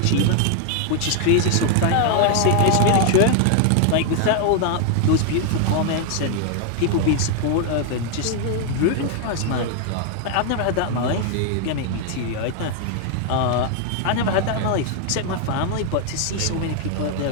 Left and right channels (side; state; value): both; different; correlation 0.00